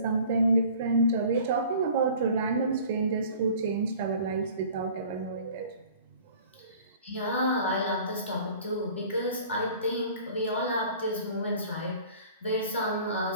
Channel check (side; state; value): both; inverted; correlation -0.48